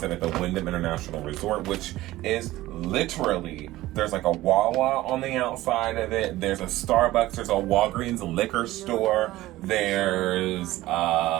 at the Wyndham International Resort, which is literally, there's like a Wawa on the outside of it, there's a Starbucks, there's a Walgreens liquor store, there's,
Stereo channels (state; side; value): quieter; left; 16.8 dB